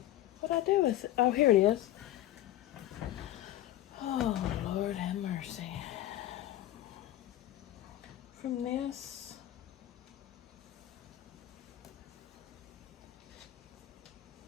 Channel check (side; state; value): right; quieter; 13.9 dB